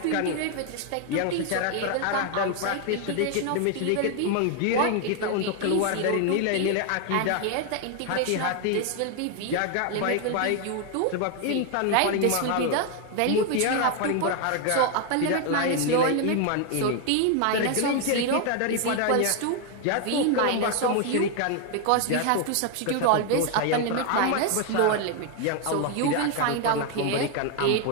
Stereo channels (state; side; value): different; both; correlation 0.01